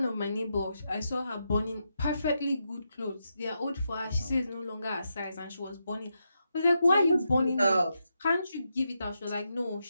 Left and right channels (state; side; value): inverted; both; correlation -0.85